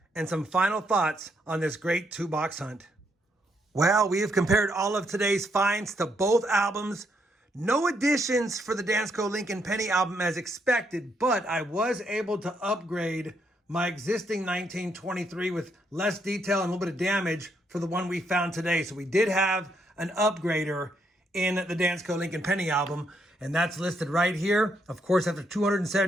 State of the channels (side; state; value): both; normal; correlation 0.75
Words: and some final thoughts on this great 2-box hunt. Well, we have compared all of today's finds to both albums. No additions for the Dansko Lincoln Penny album as expected, but I was able to upgrade my existing 1923 with less detail and a little bit of damage for the one we found today. So we did have an upgrader in the Dansko Lincoln Penny album, and that's listed right here. Of course, after